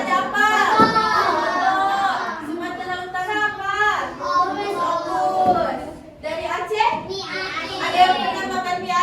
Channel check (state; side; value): identical; both; correlation 1.00